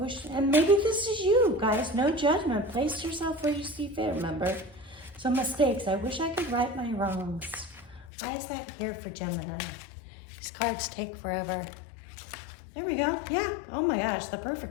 and maybe this is you, guys. No judgment. Place yourself where you see fit, remember? So mistakes. I wish I could right my wrongs. Why is that here for Gemini? These cards take forever. There we go. Yeah. Oh my gosh, the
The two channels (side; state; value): right; drops out; at 8.1 s